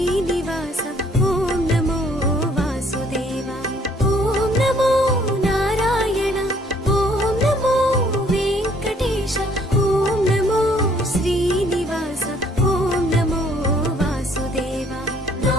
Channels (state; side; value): normal; both; correlation 0.62